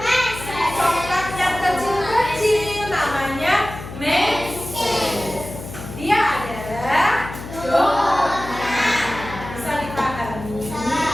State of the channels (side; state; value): left; noise; hum, 11 dB below the sound